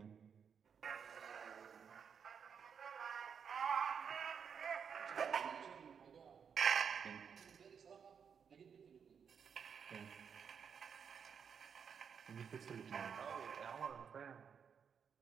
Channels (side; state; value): left; quieter; 7.0 dB